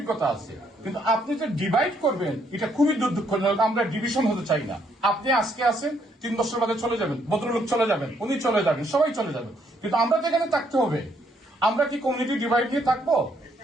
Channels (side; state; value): both; normal; correlation 0.71